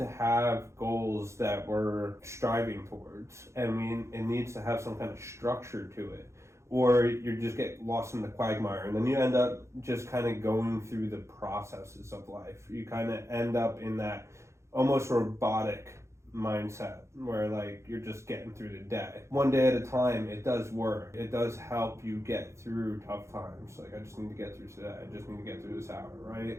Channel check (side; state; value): left; late; 0.14 ms